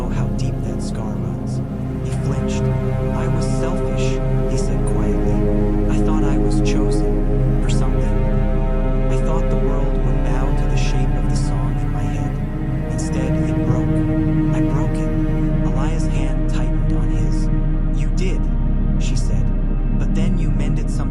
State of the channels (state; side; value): identical; both; correlation 1.00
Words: how deep that scar runs." He flinched. "I was selfish," he said quietly. "I thought I was chosen for something. I thought the world would bow to the shape of the song in my head. Instead, it broke. I broke it." Elias' hand tightened on his. "You did," she said. "But then you mended